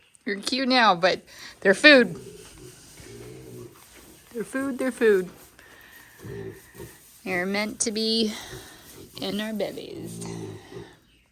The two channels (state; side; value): identical; both; correlation 1.00